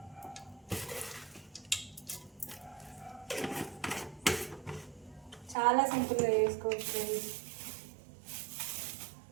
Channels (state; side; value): drops out; left; at 5.6 s